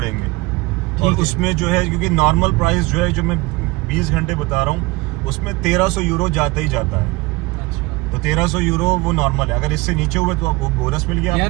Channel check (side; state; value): left; quieter; 23.1 dB